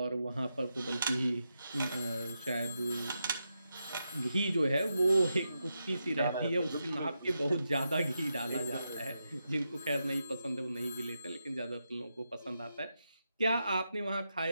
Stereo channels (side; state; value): both; inverted; correlation -0.86